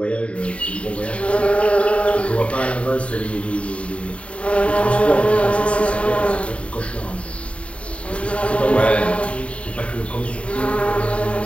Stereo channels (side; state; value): right; late; 0.062 ms